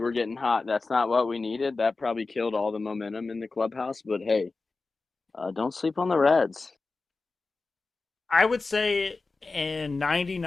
not what we needed. That probably killed all the momentum in the clubhouse. But hey, don't sleep on the Reds. I would say in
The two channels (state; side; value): quieter; right; 3.8 dB